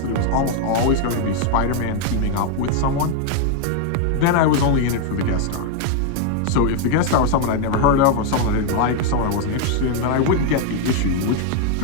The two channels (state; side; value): different; both; correlation 0.00